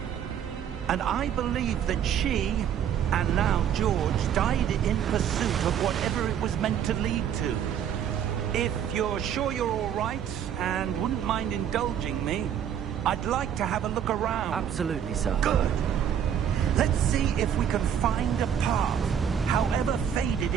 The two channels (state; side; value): quieter; left; 9.1 dB